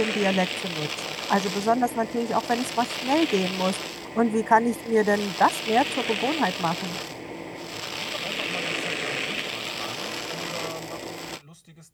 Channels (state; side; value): identical; both; correlation 1.00